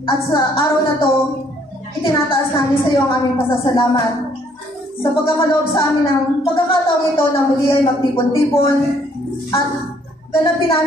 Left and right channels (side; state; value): both; normal; correlation 0.65